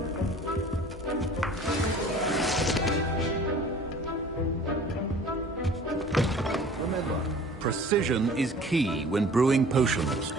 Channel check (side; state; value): both; normal; correlation 0.47